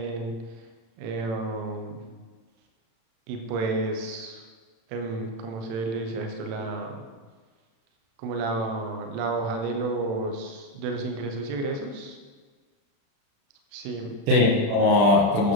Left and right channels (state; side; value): late; left; 35 ms